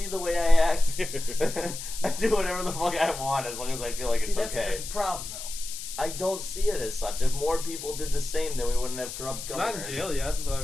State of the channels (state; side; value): noise; left; hiss, 9 dB below the sound